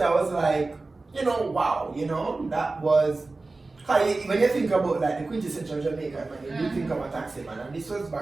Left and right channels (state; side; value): quieter; left; 3.4 dB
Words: I was like, wow, that was, when you think about like the quintessential Jamaican man, you think of a taxi man, and this was